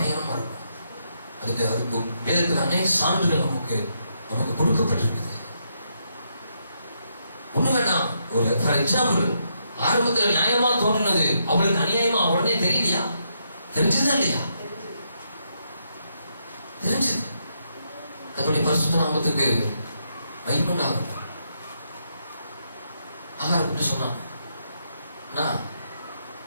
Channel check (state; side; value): inverted; both; correlation -0.78